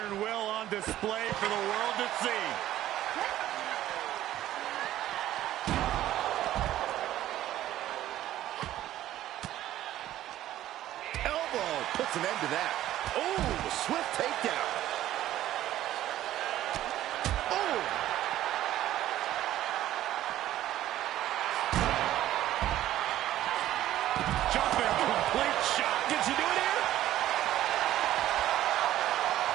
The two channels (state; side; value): quieter; left; 13.4 dB